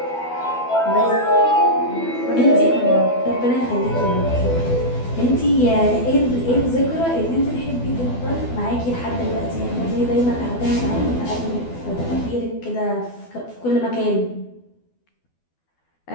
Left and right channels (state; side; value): late; right; 12 ms